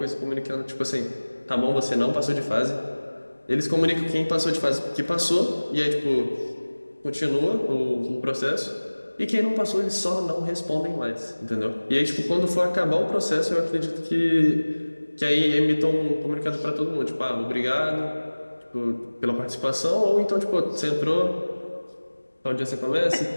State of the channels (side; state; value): both; inverted; correlation -1.00